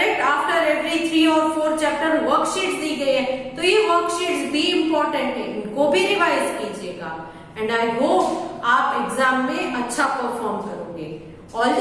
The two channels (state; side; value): identical; both; correlation 1.00